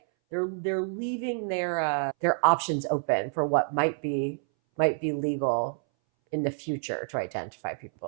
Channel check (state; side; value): silent; left; 59 dB below the other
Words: they're leaving their options open for what might be legal in the future to identify